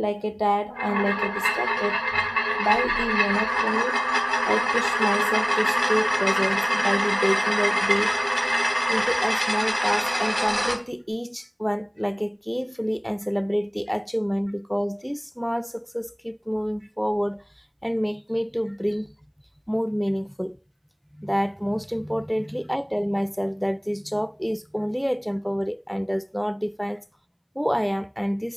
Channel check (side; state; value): both; identical; correlation 1.00